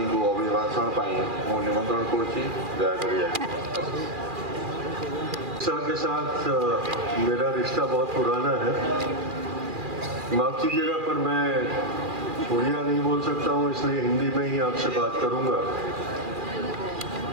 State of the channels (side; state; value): left; late; 2.4 ms